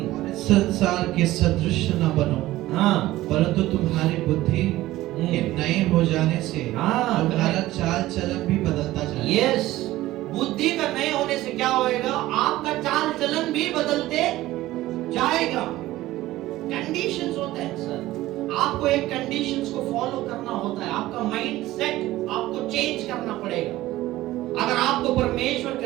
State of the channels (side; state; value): left; quieter; 16.4 dB